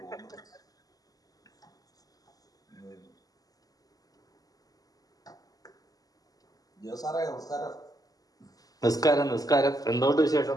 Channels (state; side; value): late; right; 0.17 ms